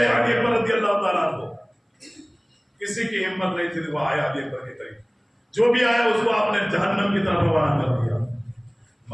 علی اکبر رضی اللہ تعالیٰ عنہ۔ کسی کی ہمت نہیں تھی، وہ آیا علی اکبر کے قریب، جو بھی آیا اس کو آپ نے جہنم کی طرف روانہ کر دیا۔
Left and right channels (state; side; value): identical; both; correlation 1.00